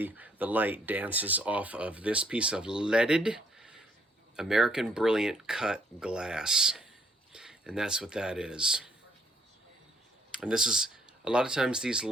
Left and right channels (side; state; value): both; normal; correlation 0.69